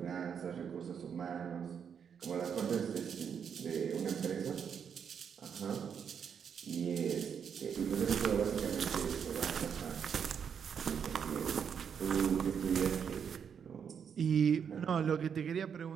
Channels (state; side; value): quieter; left; 7.4 dB